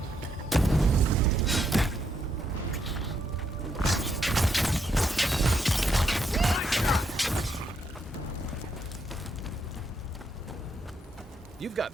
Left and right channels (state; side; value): normal; both; correlation 0.77